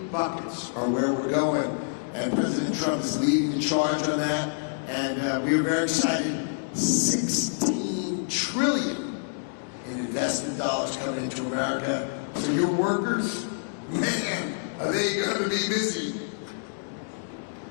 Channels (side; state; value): right; silent; digital silence